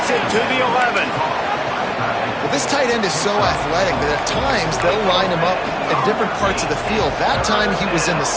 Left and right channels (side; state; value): both; identical; correlation 1.00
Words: it to the 11. Well, this tight end is so athletic that at times they'll line him up in different parts of the field. That time he was in the